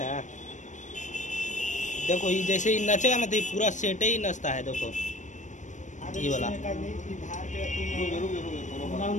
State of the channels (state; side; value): late; right; 0.35 ms